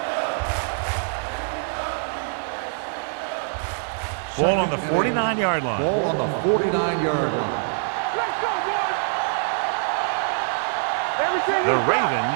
Ball on the 49-yard line. Ball on the 49-yard line. The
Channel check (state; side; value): silent; left; 61 dB below the other